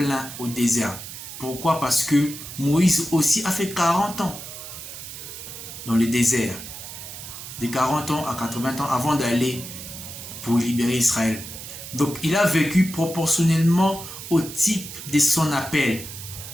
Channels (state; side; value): noise; right; hiss, 11 dB below the sound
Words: au désert. Pourquoi? Parce que Moïse aussi a fait 40 ans dans le désert. De 40 ans à 80 ans avant d'aller pour libérer Israël. Donc il a vécu proportionnellement au type de son appel.